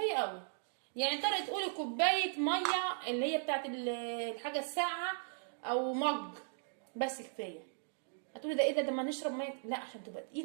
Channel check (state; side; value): silent; left; digital silence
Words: قوي. يعني تقدري تقولي كوبايه ميه اللي هي بتاعت الحاجه الساقعه او مج، بس كفايه. هتقولي ده ايه ده ما نشرب ميه؟ لا، عشان تبقى